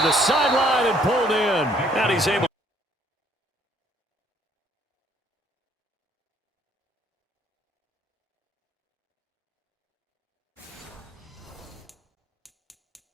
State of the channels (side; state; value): both; normal; correlation 0.63